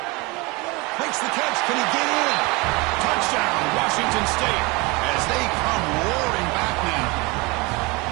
Makes the catch. Can he get in? Touchdown, Washington State, as they come roaring back now.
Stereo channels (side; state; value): left; quieter; 25.8 dB